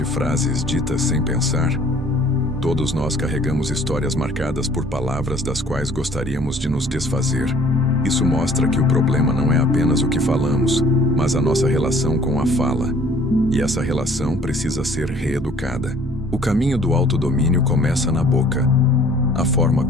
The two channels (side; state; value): both; normal; correlation 0.55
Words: frases ditas sem pensar? Todos nós carregamos histórias marcadas por palavras das quais gostaríamos de nos desfazer. Isso mostra que o problema não é apenas o que falamos, mas a nossa relação com a fala. E essa relação precisa ser reeducada. O caminho do autodomínio começa na boca. A forma